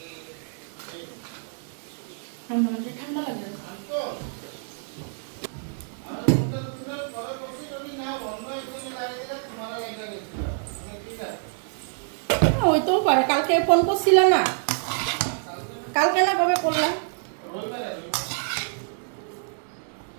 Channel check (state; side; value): silent; left; 61 dB below the other